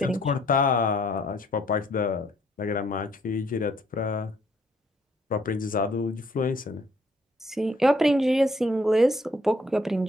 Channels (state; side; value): normal; both; correlation 0.66